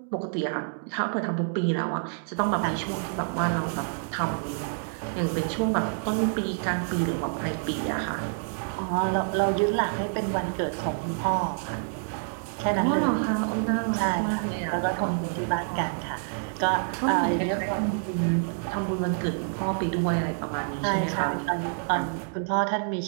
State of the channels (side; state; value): left; silent; digital silence